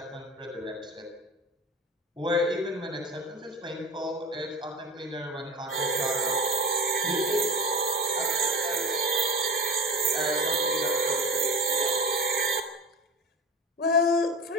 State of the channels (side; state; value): both; normal; correlation 0.32